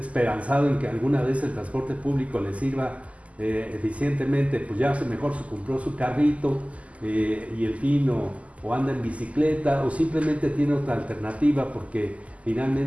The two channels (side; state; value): left; late; 0.068 ms